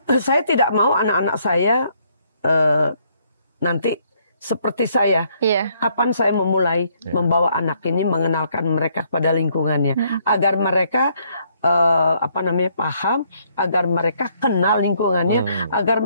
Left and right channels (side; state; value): both; inverted; correlation -0.69